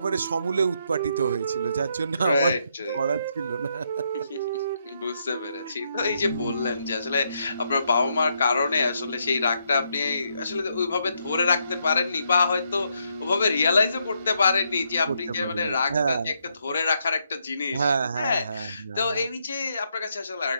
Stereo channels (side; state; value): both; inverted; correlation -0.77